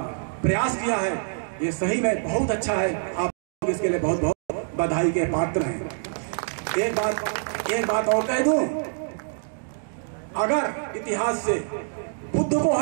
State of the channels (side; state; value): left; silent; digital silence